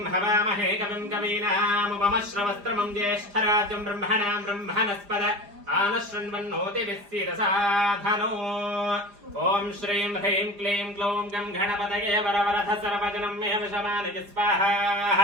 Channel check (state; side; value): late; left; 4.9 ms